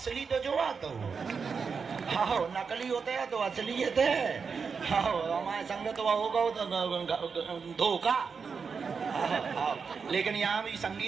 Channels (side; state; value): left; quieter; 5.6 dB